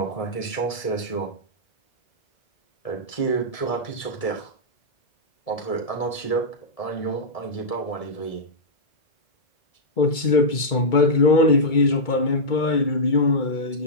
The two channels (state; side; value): late; right; 2.2 ms